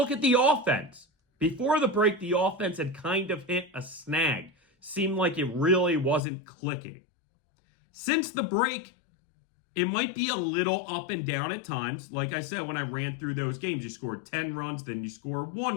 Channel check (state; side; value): drops out; right; at 6.2 s